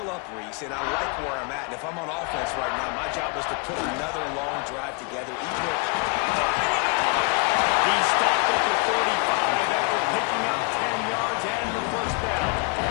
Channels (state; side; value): quieter; right; 31.9 dB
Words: up, Reese, and I like where I'm at. And if I'm on offense right now, my job is to put another long drive together. He stopped at the 45 after picking up 10 yards and the 1st down.